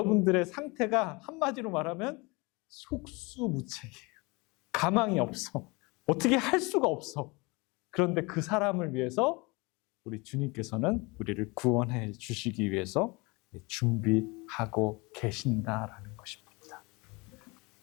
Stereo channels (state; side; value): quieter; right; 26.4 dB